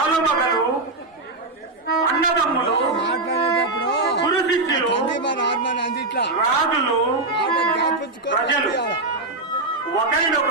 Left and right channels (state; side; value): quieter; left; 3.1 dB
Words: అన్నదమ్ములు, గురు శిష్యులు, రాజులు, ప్రజలు